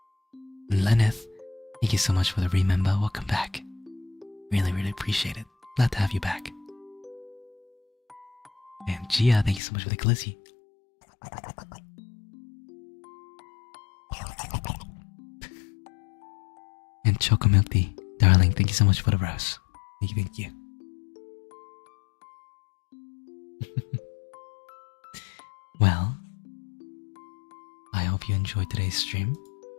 And Lenneth, thank you so much for the remember. Welcome back. Really, really appreciate it. Glad to have you back. And Gia, thank you so much for the glizzy. And Choco Milk Tea, darling, thank you so much for the rose. Thank you. Well, I hope you enjoyed today's stream.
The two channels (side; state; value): right; drops out; at 9.6 s